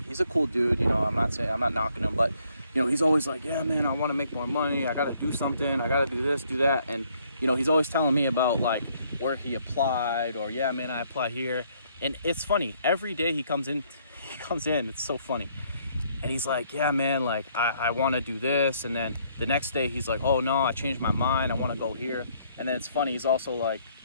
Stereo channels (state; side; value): inverted; both; correlation -0.67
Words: a cool dude, you know, I'm not knocking him, but you know, he's always like, yeah, man, I want to make more money. I got to do something. I got to do this, do that. And, you know, he's always telling me about like where he applied, or, yeah, man, I applied here. And it's funny. Every day he comes in, it's so funny. And he's like, yeah, man, like I want to do this. And then the next day he's like, oh no, I changed my mind. I want to go here. And then it's funny. He's also like